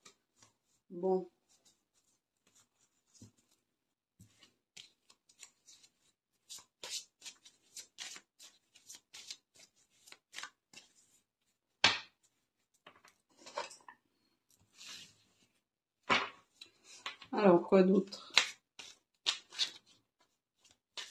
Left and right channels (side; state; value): both; identical; correlation 1.00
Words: Bon. Alors, quoi d'autre?